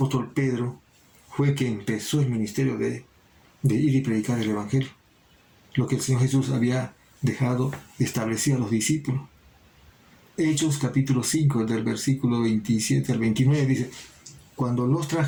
Pedro fue quien empezó el ministerio de ir y predicar el Evangelio, lo que el Señor Jesús había dejado establecido a los discípulos. Hechos capítulo 5, del versículo 27 al 29, dice: cuando los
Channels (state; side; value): identical; both; correlation 1.00